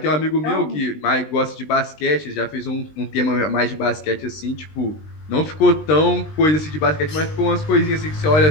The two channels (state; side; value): late; right; 20 ms